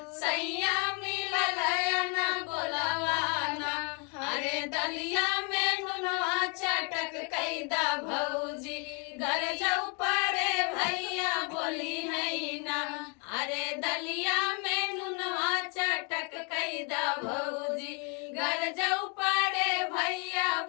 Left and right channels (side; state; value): right; quieter; 35.5 dB